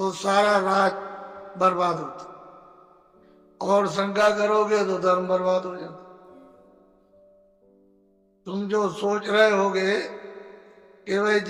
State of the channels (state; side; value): identical; both; correlation 1.00